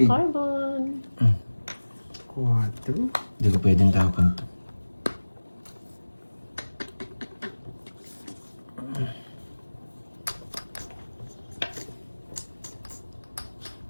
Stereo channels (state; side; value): inverted; both; correlation -1.00